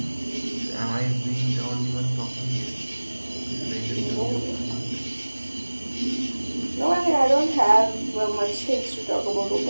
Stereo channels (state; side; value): inverted; both; correlation -1.00